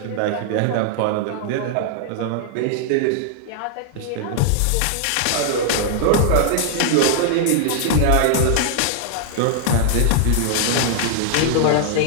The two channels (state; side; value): different; both; correlation 0.00